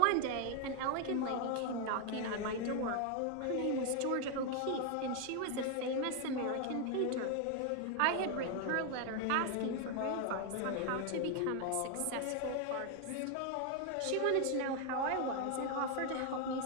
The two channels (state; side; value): different; both; correlation 0.01